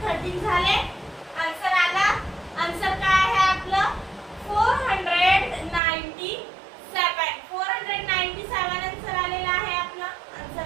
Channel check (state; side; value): drops out; left; at 5.8 s